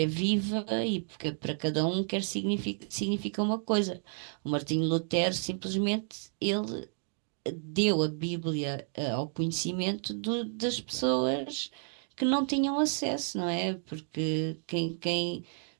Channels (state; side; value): silent; left; 57 dB below the other